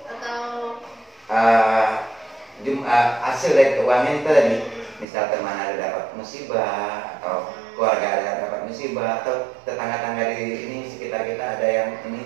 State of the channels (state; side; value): drops out; left; at 5.1 s